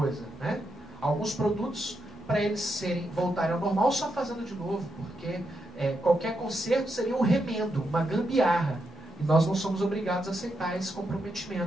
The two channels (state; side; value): normal; both; correlation 0.83